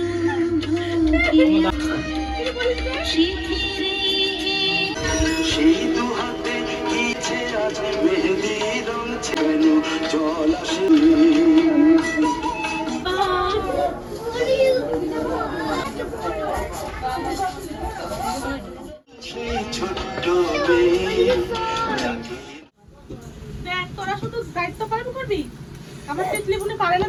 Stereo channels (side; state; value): both; identical; correlation 1.00